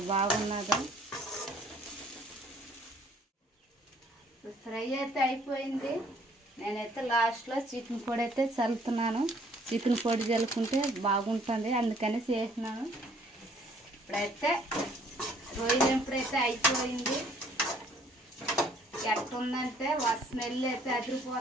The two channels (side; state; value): both; normal; correlation 0.60